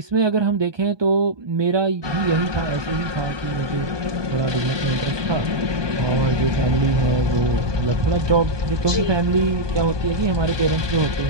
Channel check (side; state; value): left; late; 1.2 ms